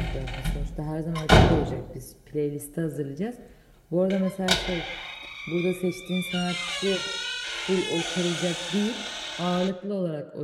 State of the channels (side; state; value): both; identical; correlation 1.00